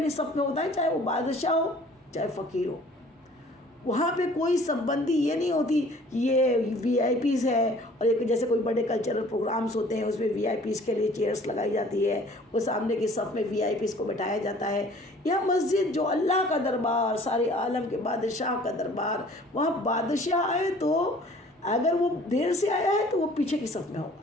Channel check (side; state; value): both; normal; correlation 0.52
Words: صف میں ہوتا ہے، چاہے وہ بادشاہ ہو چاہے فقیر ہو۔ وہاں پہ کوئی سب بندی یہ نہیں ہوتی کہ یہ وی آئی پیز ہے، اور ایک جیسے کوئی بڑے کلچرل پروگرامز ہوتے ہیں اس میں وی آئی پیز کے لیے چیئرس لگائی جاتی ہے، وہ سامنے کی صف میں وی آئی پیز کو بٹھایا جاتا ہے۔ یہ مسجد جو اللہ کا دربار، سارے عالم کے بادشاہ کا دربار، وہاں بادشاہ آئے تو اگر وہ دیر سے آیا ہے تو وہ پیچھے کی صف میں